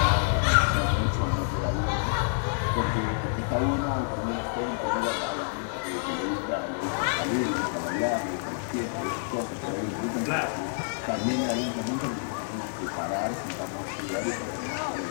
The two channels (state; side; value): silent; right; digital silence